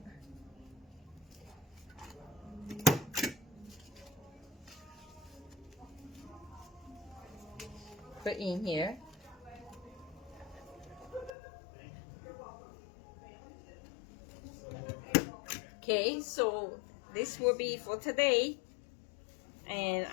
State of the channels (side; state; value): right; drops out; at 11.3 s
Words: Put in here. Okay, so this will be for today, and